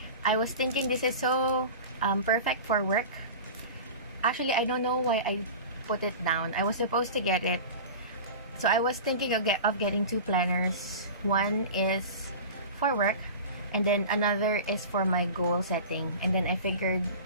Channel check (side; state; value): both; inverted; correlation -0.33